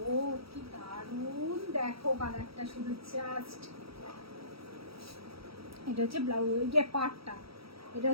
কি দারুণ, দেখো কালারটা, শুধু জাস্ট। এটা হচ্ছে ব্লাউজ, যে পার্টটা, এটা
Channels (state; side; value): late; left; 0.76 ms